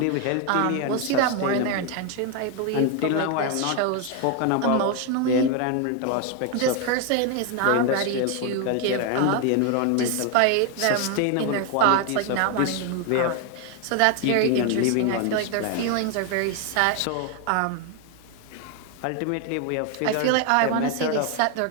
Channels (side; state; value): both; different; correlation 0.01